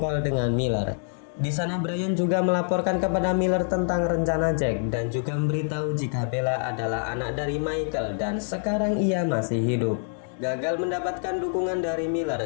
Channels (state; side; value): silent; right; digital silence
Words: dengan Miller. Di sana Brian juga melaporkan kepada Miller tentang rencana Jack dan juga memberitahu jika Bella adalah anak dari Michael dan sekarang ia masih hidup. Gagal mendapatkan dukungan dari Miller,